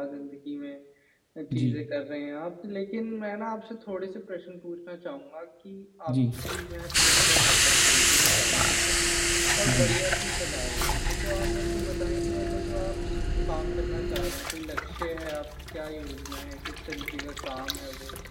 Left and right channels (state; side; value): identical; both; correlation 1.00